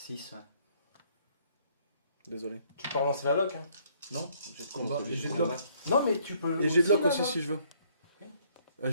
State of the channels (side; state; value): both; inverted; correlation -0.64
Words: ouais. Désolé. Tu peux relancer la lock, hein. Non, j'ai de combat. Non, Et j'ai de combat. lock. Non, mais tu peux. Et j'ai de lock là, aussi là. si je veux. Je